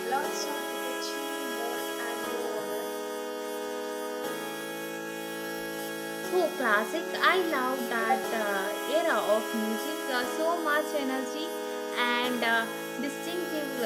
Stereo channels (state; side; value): identical; both; correlation 1.00